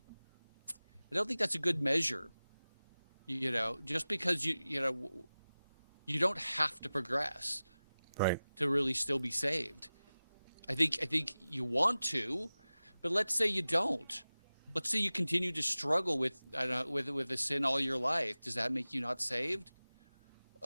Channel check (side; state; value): both; inverted; correlation -0.96